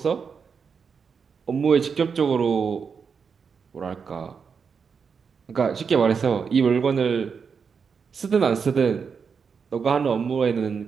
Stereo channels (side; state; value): left; quieter; 6.0 dB